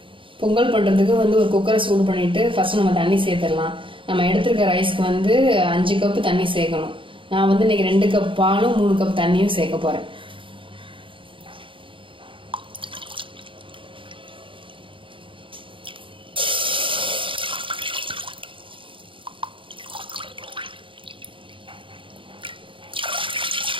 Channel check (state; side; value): late; left; 0.25 ms